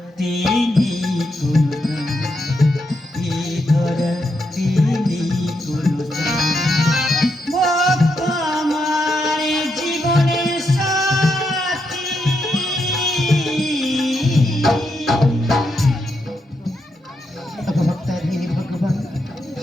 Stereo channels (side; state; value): both; normal; correlation 0.82